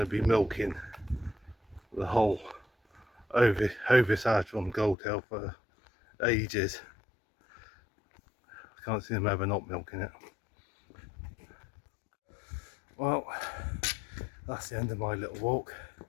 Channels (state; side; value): drops out; right; at 5.0 s